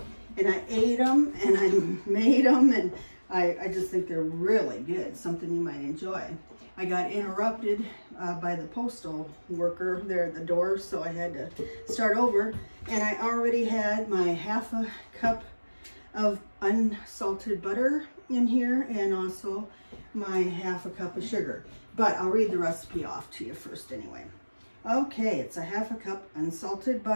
and I ate them and I made them, and I just think they're really good, something you might enjoy. I got interrupted by the postal worker there at the door, so I had to start over. And I already had my half a cup of unsalted butter in here, and also my half a cup of sugar. But I'll read the recipe off to you first anyway. Okay, it's a half a cup unsalted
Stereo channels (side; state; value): both; inverted; correlation -1.00